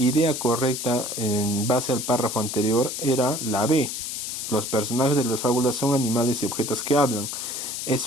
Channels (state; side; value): noise; left; hiss, 5 dB below the sound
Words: correcta en base al párrafo anterior era la B. Los personajes de las fábulas son animales y objetos que hablan.